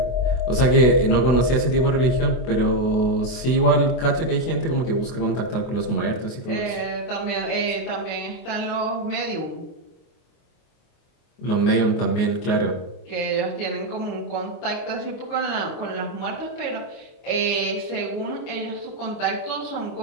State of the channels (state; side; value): late; right; 24 ms